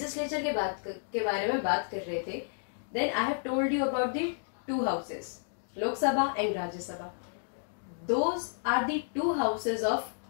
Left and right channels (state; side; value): silent; right; digital silence